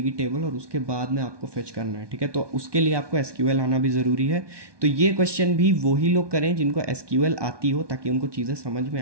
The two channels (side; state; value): left; late; 1.2 ms